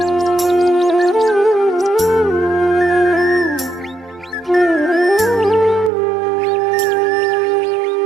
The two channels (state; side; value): drops out; left; at 5.9 s